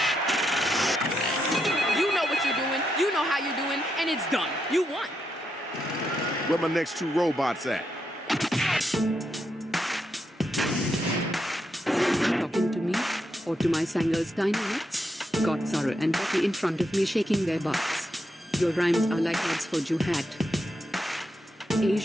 And it's done. You won. Where my next 2 robots at? Talking to me? Or to my Sanger's dynamics? Got Zara and Becky in front of me shaking their butts. Your rhymes are like ads for Juhat.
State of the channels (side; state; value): both; normal; correlation 0.82